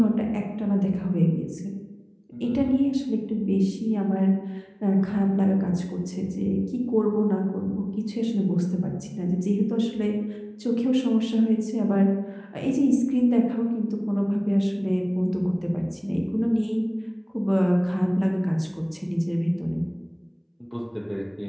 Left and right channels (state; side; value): identical; both; correlation 1.00